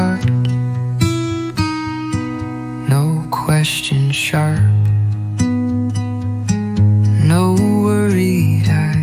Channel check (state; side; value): identical; both; correlation 1.00